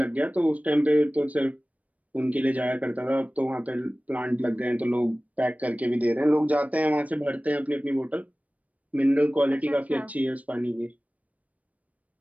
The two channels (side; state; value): left; late; 0.069 ms